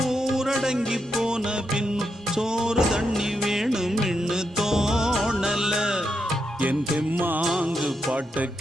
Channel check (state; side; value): normal; both; correlation 0.83